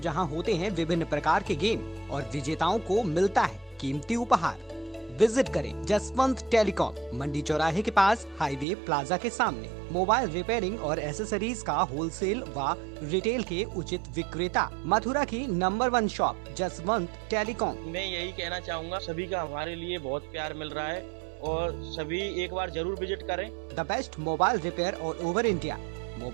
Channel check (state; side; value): drops out; left; at 8.7 s